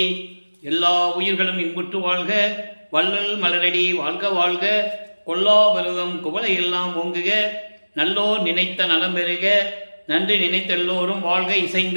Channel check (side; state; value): both; inverted; correlation -1.00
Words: எல்லா உயிர்களும் இன்புற்று வாழ்க, வள்ளல் மலரடி வாழ்க வாழ்க, கொல்லா பருவம் குவளை எல்லாம் ஓங்குக, நல்லோர் நினைத்த நலம் பெறுக, நன்றி நினைத்த எல்லோரும் வாழ்க